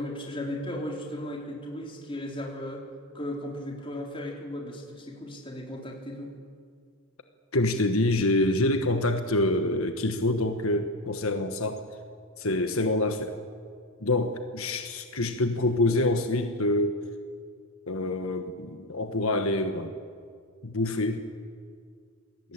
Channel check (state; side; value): normal; both; correlation 0.16